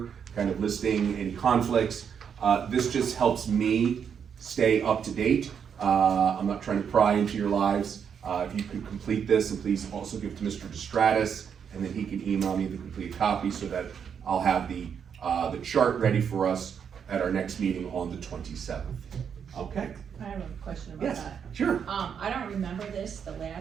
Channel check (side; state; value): left; quieter; 7.4 dB